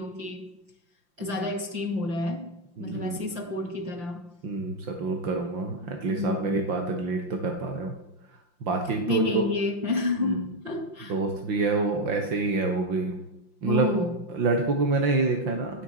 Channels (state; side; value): late; left; 5.7 ms